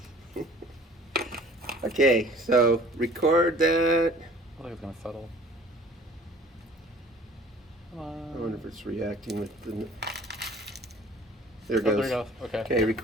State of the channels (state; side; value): normal; both; correlation 0.50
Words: Okay, so record that. I think it's going to settle. Come on. I wonder if it's reacting with the... There it Oh, goes. there it goes. Okay. Okay,